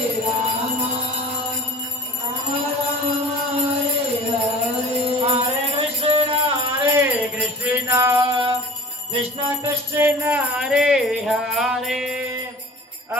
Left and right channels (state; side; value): normal; both; correlation 0.41